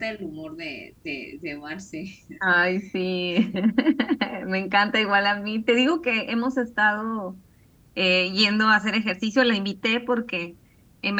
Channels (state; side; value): identical; both; correlation 1.00